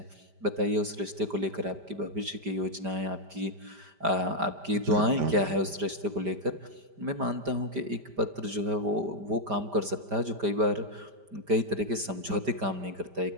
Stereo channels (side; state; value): left; late; 5.0 ms